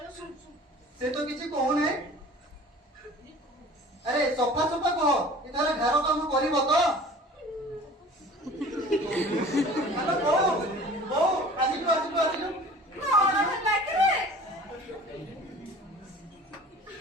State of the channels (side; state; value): both; normal; correlation 0.45